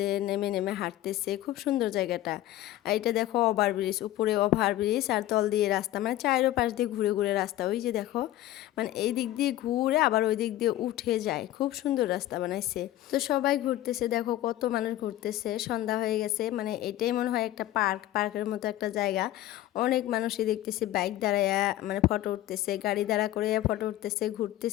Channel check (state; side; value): quieter; right; 14.4 dB